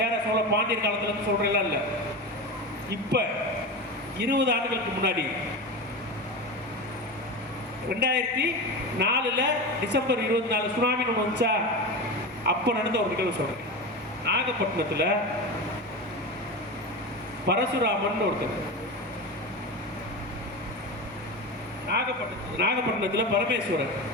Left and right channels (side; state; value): both; normal; correlation 0.24